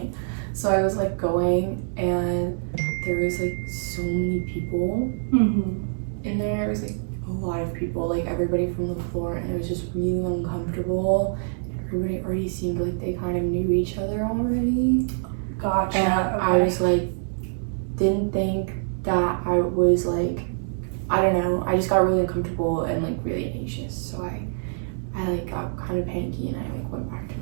so I was like going, and there was like so many people in there. It was like a lot of people, like everybody from the floor, and it was just really uncomfortable. Everybody already seemed like they kind of knew each other already. Gotcha. And okay. I was like, didn't think that I was like, I don't know, I just got really uncomfortable and like really anxious, so I like got kind of panicky, and I like went back to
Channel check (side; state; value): left; silent; digital silence